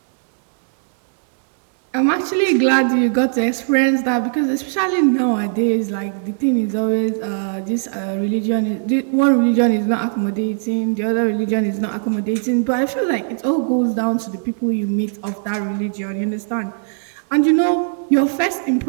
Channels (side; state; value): left; silent; digital silence